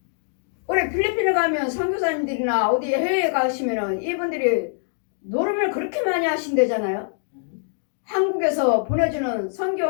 우리 필리핀에 가면 선교사님들이나 어디 해외에 가시면은 이분들이 노름을 그렇게 많이 하신대잖아요. 한국에서 보내주는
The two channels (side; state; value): right; silent; digital silence